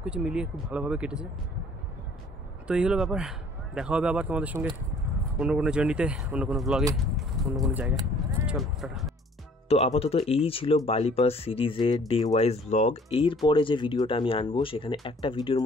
কিছু মিলিয়ে খুব ভালোভাবে কেটেছে। তো এই হলো ব্যাপার। দেখা হবে আবার তোমাদের সঙ্গে অন্য কোনো জার্নিতে, অন্য কোনো ব্লগে, অন্য কোনো জায়গায়। চলো টাটা। তো আপাতত এই ছিল বালি পাস সিরিজের ডে ওয়াইজ ব্লগ। এরপরে যে ভিডিওটা আমি আনবো সেখানে একটা ভিডিওর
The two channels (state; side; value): normal; both; correlation 0.55